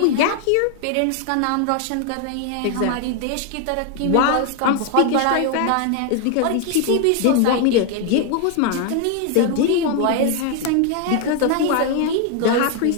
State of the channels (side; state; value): both; different; correlation 0.01